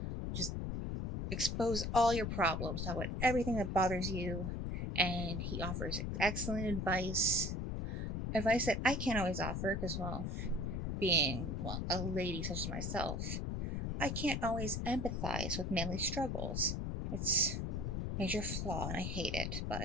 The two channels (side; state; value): left; noise; rumble, 2 dB below the sound